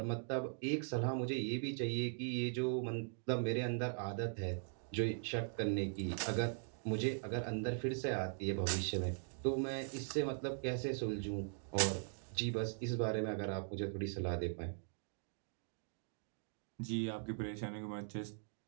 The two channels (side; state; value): left; silent; digital silence